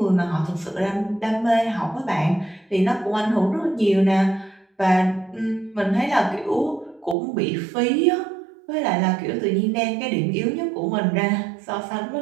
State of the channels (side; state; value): left; drops out; at 7.2 s